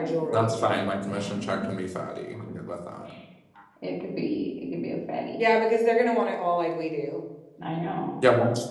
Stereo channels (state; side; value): identical; both; correlation 1.00